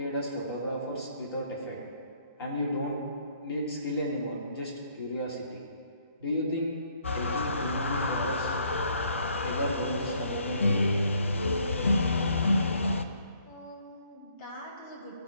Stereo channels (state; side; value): inverted; both; correlation -0.65